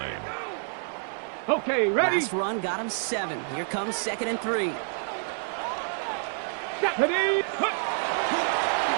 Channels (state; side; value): silent; left; digital silence